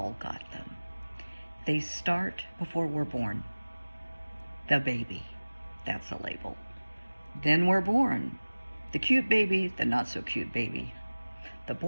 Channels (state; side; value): inverted; both; correlation -1.00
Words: got them. They start before we're born. The baby, that's a label. Then we're born. The cute baby, the not so cute baby. The